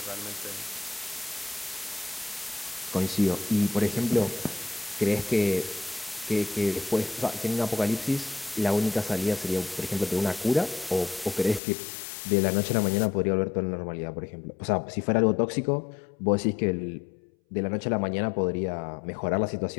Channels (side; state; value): right; drops out; at 11.6 s